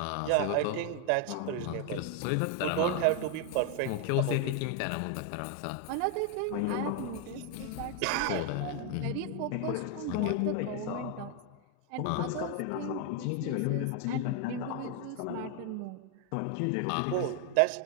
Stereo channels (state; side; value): different; both; correlation 0.01